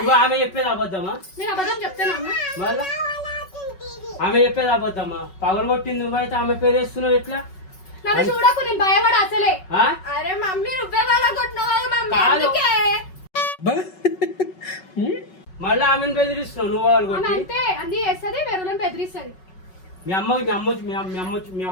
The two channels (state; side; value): late; right; 5.3 ms